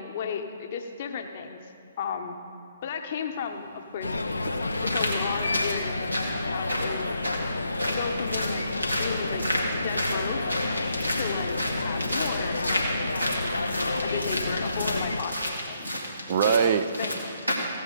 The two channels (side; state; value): both; inverted; correlation -0.75